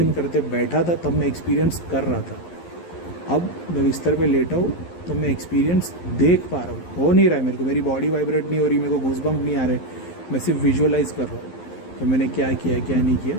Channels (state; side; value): late; right; 11 ms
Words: करते बैठा था तब मैं एक्सपीरियंस कर रहा था, अब मैं बिस्तर पे लेटा हूँ तो मैं एक्सपीरियंस देख पा रहा हूँ। हो नहीं रहा है मेरे को, मेरी बॉडी वाइब्रेट नहीं हो रही, मेरे को गूज़बम्प नहीं आ रहे, मैं सिर्फ विजुअलाइज कर रहा हूँ कि मैंने क्या किया क्या नहीं किया,